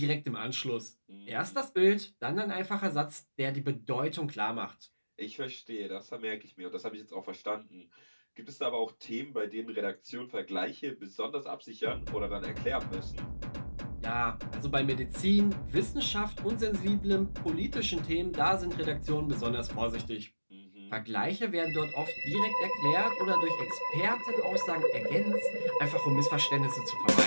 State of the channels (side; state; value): both; inverted; correlation -1.00